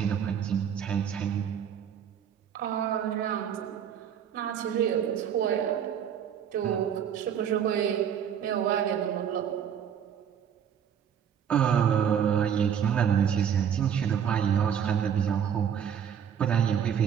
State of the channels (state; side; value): quieter; left; 8.4 dB